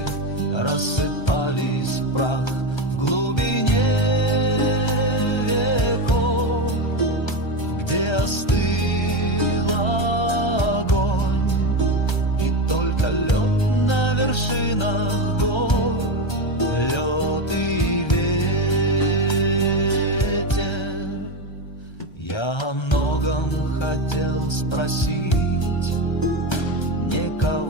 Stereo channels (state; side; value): late; right; 1.3 ms